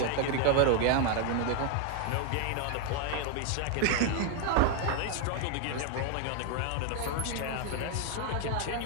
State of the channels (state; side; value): different; both; correlation 0.01